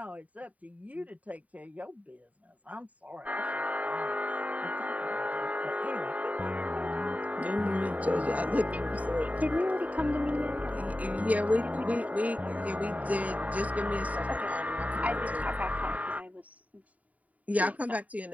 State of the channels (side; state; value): left; late; 0.070 ms